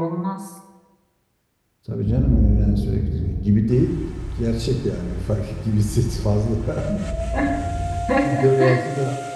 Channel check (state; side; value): identical; both; correlation 1.00